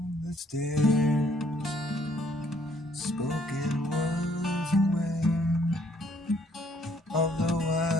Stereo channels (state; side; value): normal; both; correlation 0.66